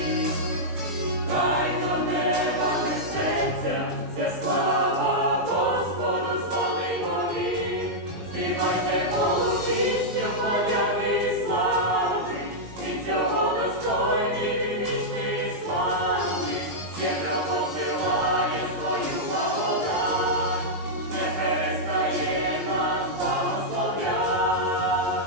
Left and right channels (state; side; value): late; left; 19 ms